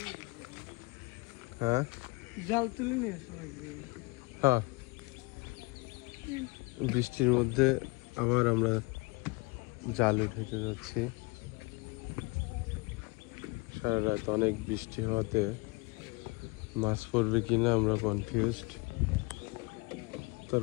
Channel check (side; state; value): right; quieter; 26.8 dB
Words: হ্যাঁ জাল তুলে নিয়ে হ্যাঁ বৃষ্টির মধ্যে আবার আমরা জাল উঠাইতে যাচ্ছি। সারা রাত অনেক বৃষ্টি হওয়াতে মাছ পড়বে কিনা আমরা কনফিউজড।